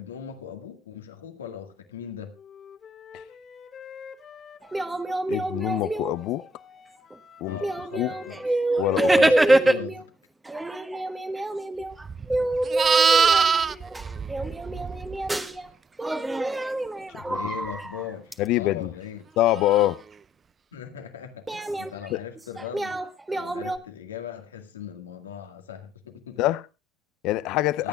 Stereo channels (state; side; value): normal; both; correlation 0.72